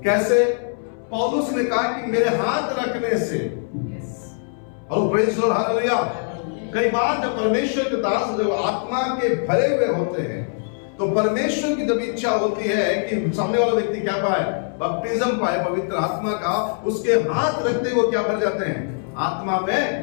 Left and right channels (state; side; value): silent; right; 63 dB below the other